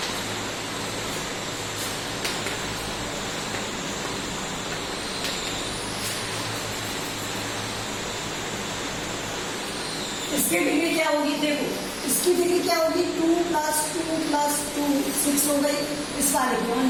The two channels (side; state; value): both; identical; correlation 1.00